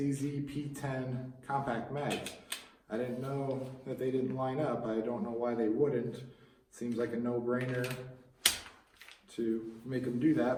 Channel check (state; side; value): identical; both; correlation 1.00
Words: P10 compact mag. I didn't know that they didn't line up. I don't know why they wouldn't. Seems like a no-brainer to make them do